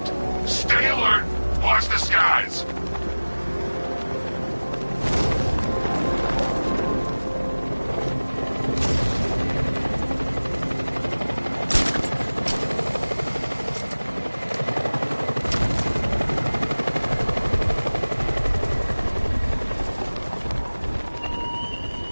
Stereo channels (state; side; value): inverted; both; correlation -1.00